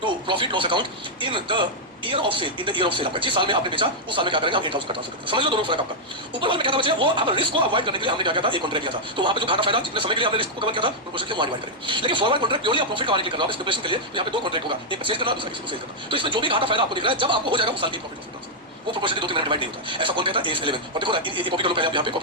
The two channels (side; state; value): both; normal; correlation -0.04